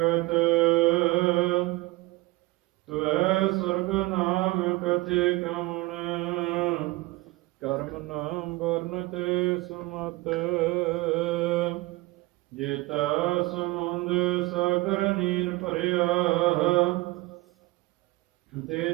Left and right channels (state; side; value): quieter; left; 20.9 dB